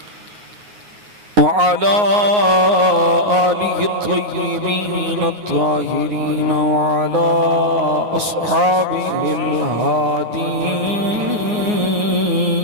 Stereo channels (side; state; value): left; late; 9.6 ms